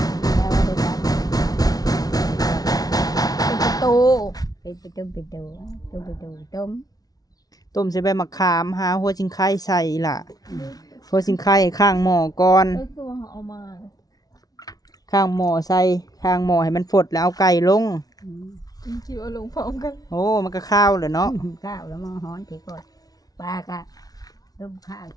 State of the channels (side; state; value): right; late; 0.18 ms